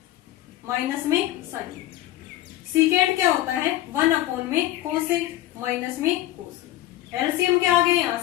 माइनस में साइन ए। सीकेंट क्या होता है, 1 में कोस ए माइनस में कोस ए। एलसीएम क्या आ गया यहाँ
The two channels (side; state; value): right; quieter; 14.8 dB